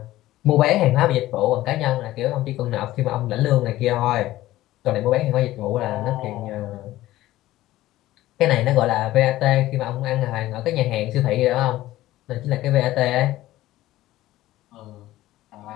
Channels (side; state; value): right; quieter; 15.7 dB